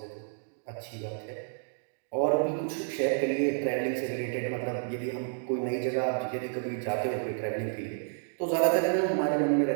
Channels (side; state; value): left; silent; digital silence